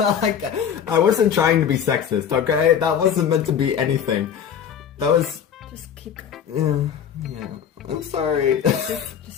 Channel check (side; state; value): right; quieter; 8.3 dB